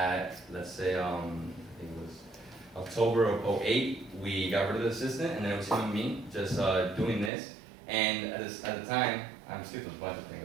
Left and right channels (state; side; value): drops out; left; at 7.3 s